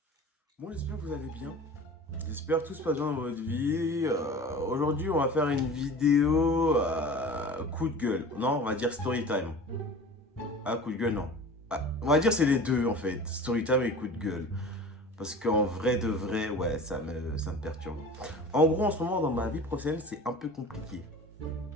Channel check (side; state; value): both; normal; correlation 0.38